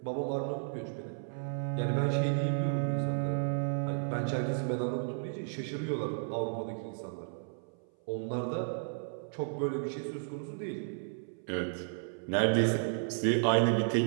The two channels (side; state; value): left; silent; 56 dB below the other